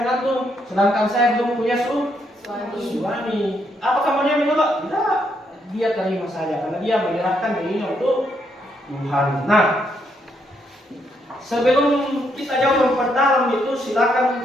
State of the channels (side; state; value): both; normal; correlation 0.76